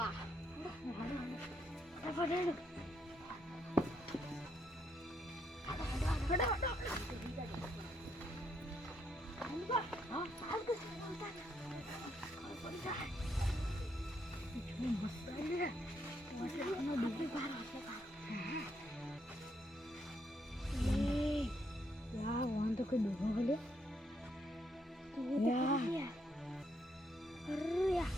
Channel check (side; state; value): both; normal; correlation 0.76